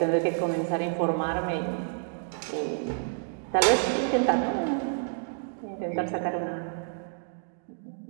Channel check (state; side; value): silent; left; digital silence